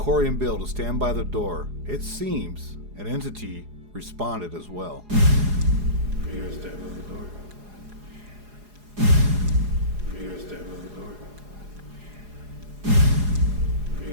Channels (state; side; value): late; left; 4.8 ms